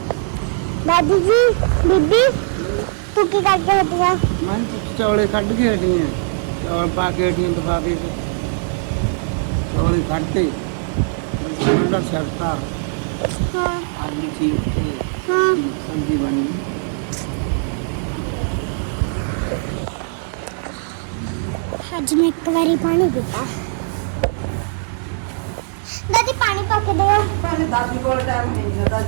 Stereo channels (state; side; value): silent; left; digital silence